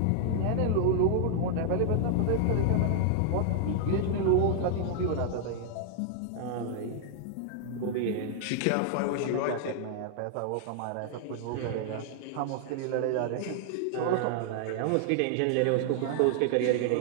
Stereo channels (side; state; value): both; different; correlation 0.00